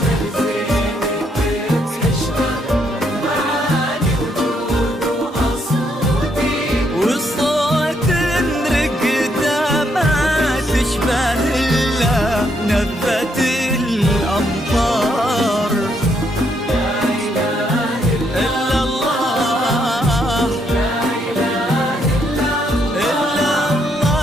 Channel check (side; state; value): both; normal; correlation 0.74